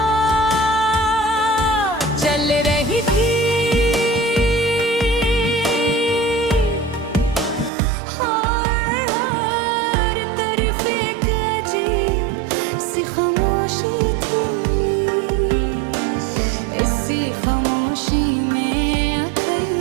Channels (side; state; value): left; drops out; at 7.7 s